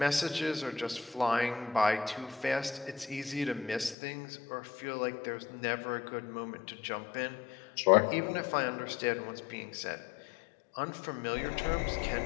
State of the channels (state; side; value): drops out; right; at 4.0 s